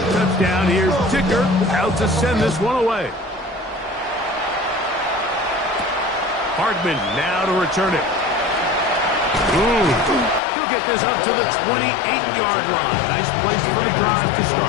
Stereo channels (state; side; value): drops out; right; at 10.4 s